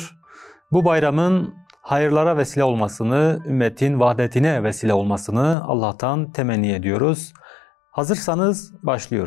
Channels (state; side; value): drops out; right; at 5.6 s